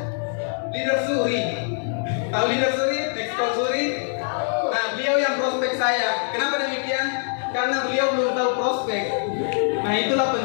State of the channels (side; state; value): right; silent; 63 dB below the other